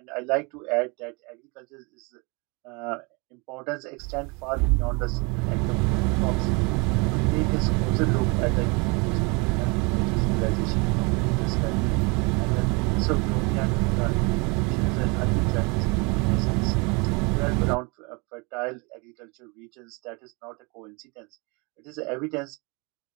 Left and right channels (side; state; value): left; quieter; 29.9 dB